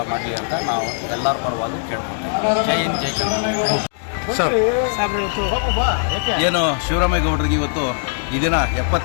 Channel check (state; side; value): silent; right; 66 dB below the other